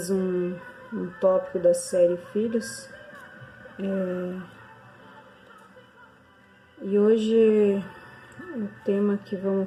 um tópico da série Filhos. E hoje o tema que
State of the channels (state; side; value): identical; both; correlation 1.00